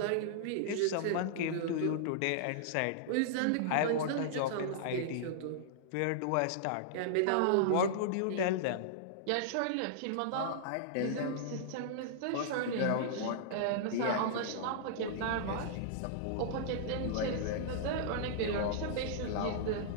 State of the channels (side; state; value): both; different; correlation -0.02